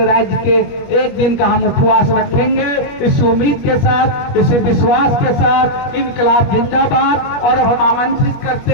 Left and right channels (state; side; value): late; right; 21 ms